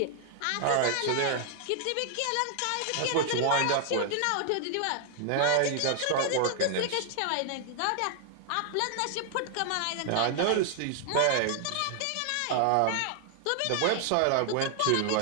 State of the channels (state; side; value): different; both; correlation 0.00